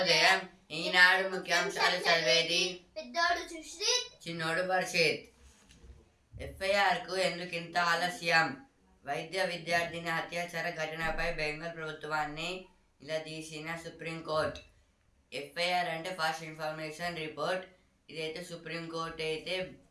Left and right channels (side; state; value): both; identical; correlation 1.00